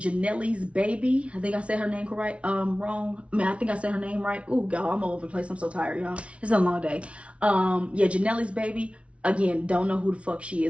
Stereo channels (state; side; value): late; left; 0.062 ms